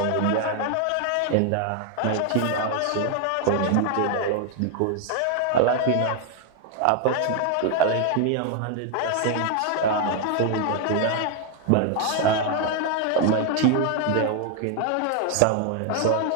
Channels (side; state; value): both; different; correlation 0.00